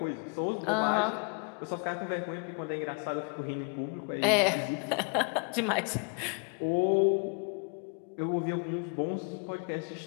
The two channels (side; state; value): right; quieter; 37.3 dB